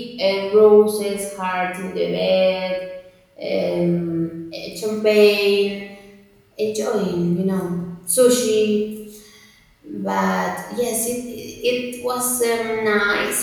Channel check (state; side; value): identical; both; correlation 1.00